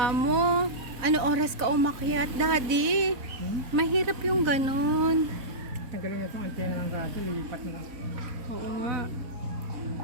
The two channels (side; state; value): left; late; 4.0 ms